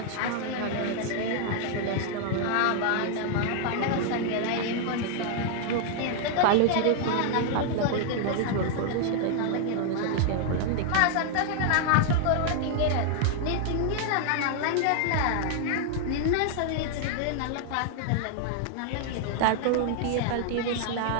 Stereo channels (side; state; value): both; different; correlation 0.00